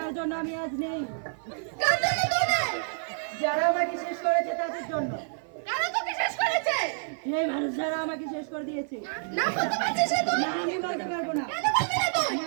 জন্য আমি আজ নেই, যারা আমাকে শেষ করেছে তাদের জন্য। সেই মানুষ যারা আমাকে শেষ করে দিয়েছে। না আমি বলতে পারবো না,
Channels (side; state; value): left; silent; 55 dB below the other